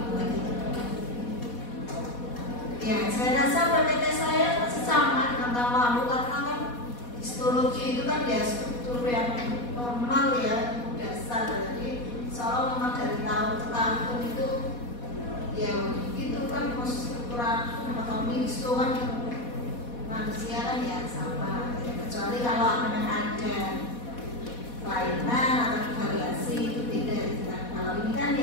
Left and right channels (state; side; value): late; right; 4.2 ms